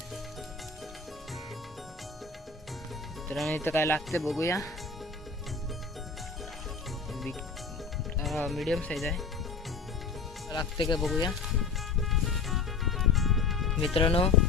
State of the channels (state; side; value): quieter; right; 4.6 dB